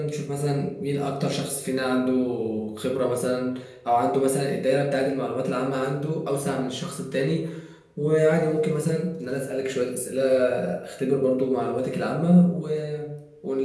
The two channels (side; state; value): both; identical; correlation 1.00